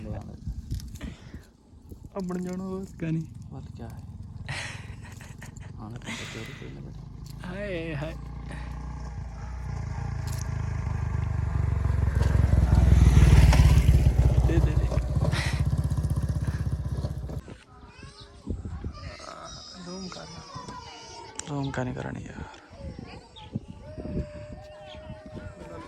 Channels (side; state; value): both; identical; correlation 1.00